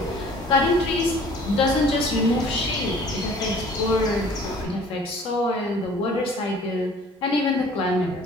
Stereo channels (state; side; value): normal; both; correlation 0.52